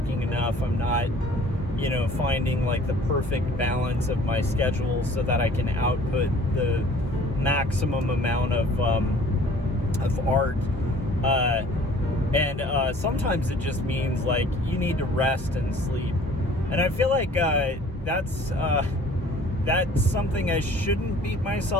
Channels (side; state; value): both; normal; correlation 0.52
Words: enough, I'm not, finding like the perfect balance of my schedule so that I can output the maximum amount of art. And sometimes it just means like you need to rest and sleep. And I feel like that's something I shouldn't beat